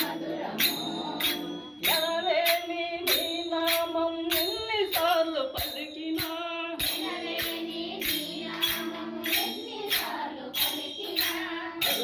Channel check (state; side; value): identical; both; correlation 1.00